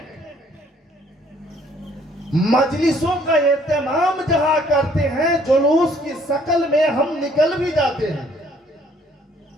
مجلسوں کا اہتمام جہاں کرتے ہیں، جلوس کی شکل میں ہم نکل بھی جاتے ہیں،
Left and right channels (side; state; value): both; normal; correlation 0.62